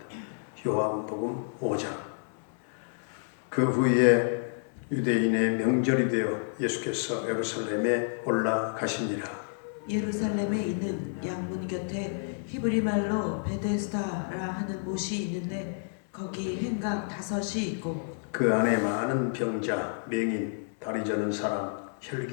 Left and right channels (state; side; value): silent; right; digital silence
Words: 요한복음 5장. 그 후에 유대인의 명절이 되어 예수께서 예루살렘에 올라가시니라. 예루살렘에 있는 양문 곁에 히브리 말로 베데스다라 하는 못이 있는데 거기 행각 5이 있고 그 안에 많은 병자, 맹인, 다리 저는 사람,